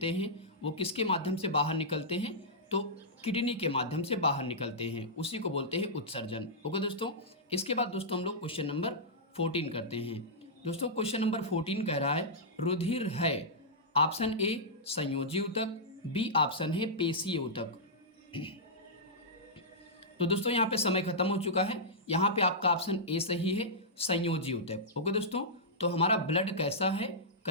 हैं, वो किसके माध्यम से बाहर निकलते हैं, तो किडनी के माध्यम से बाहर निकलते हैं, उसी को बोलते हैं उत्सर्जन। ओके दोस्तों, इसके बाद दोस्तों हम लोग क्वेश्चन नंबर 14 करते हैं। दोस्तों क्वेश्चन नंबर 14 कह रहा है, रुधिर है। ऑप्शन ए संयोजी ऊतक, बी ऑप्शन है पेशीय ऊतक। तो दोस्तों यहाँ पे समय खत्म हो चुका है। यहाँ पे आपका ऑप्शन ए सही है, संयोजी ऊतक। ओके दोस्तों, तो हमारा ब्लड कैसा है,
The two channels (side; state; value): both; normal; correlation -0.12